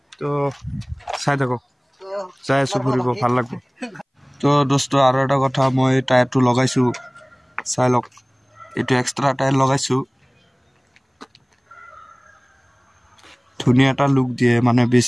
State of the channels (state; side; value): identical; both; correlation 1.00